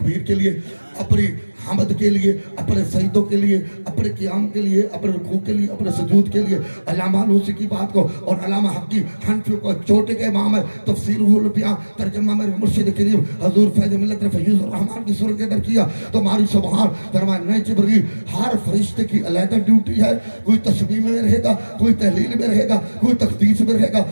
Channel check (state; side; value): inverted; both; correlation -1.00